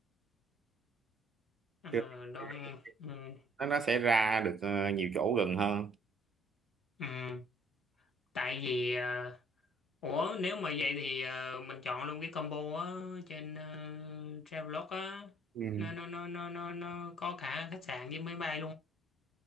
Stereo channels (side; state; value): both; normal; correlation 0.62